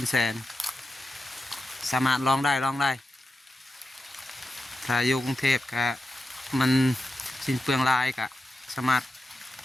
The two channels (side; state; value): both; normal; correlation 0.90